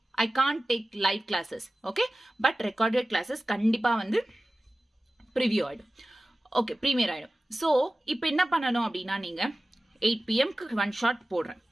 I can't take live classes. Okay? But recorded classes கண்டிப்பாக ப்ரிவியூ ஆகிடும். ஓகே, ப்ரீமியர் ஆகிடும். ஸோ இப்போ என்ன பண்ணணும் அப்படின்னா, நீங்கள் 8 PM-க்கு 1 shot போடுறேன்.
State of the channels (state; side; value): normal; both; correlation 0.95